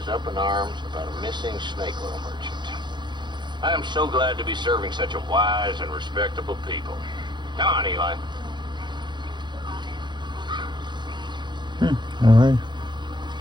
up in arms about a missing snake oil merchant. I am so glad to be serving such a wise and respectable people. Come on, Eli. Alright.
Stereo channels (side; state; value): left; late; 0.22 ms